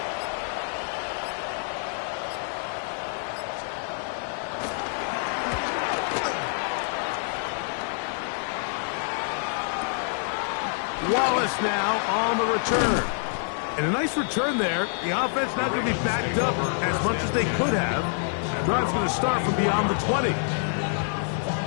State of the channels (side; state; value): right; silent; 60 dB below the other